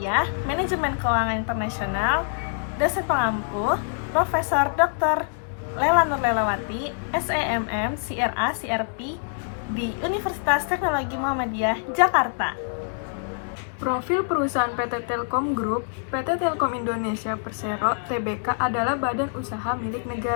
Manajemen Keuangan Internasional, dosen pengampu Profesor Dr. Lela Nur Lelawati, SEMM CRA CRP di Universitas Teknologi Muhammadiyah, Jakarta. Profil perusahaan PT Telkom Group, PT Telkom Indonesia Persero Tbk adalah badan usaha milik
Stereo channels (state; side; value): silent; right; digital silence